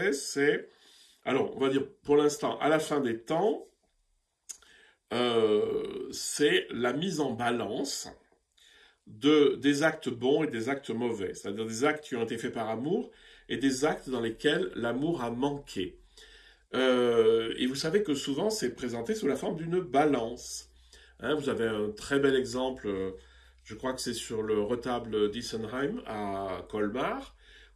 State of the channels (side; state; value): both; identical; correlation 1.00